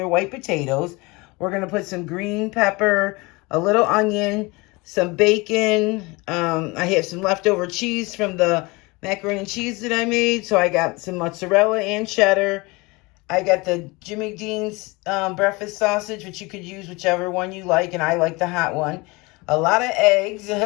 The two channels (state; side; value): quieter; right; 24.9 dB